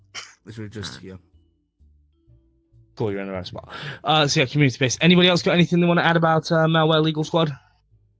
Literally just here. Cool, you're in the right spot. So yeah, community based. Anybody else got anything they want to add about Malware Legal Squad?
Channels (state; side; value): identical; both; correlation 1.00